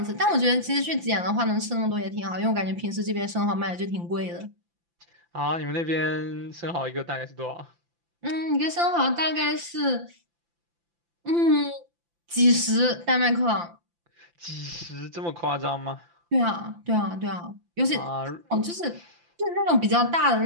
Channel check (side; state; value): left; late; 5.8 ms